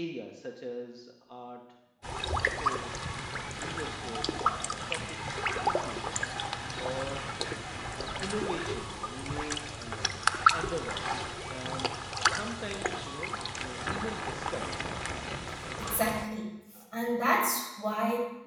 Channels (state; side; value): identical; both; correlation 1.00